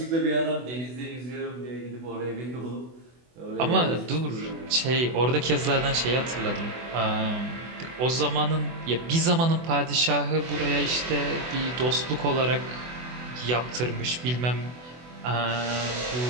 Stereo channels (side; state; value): left; late; 24 ms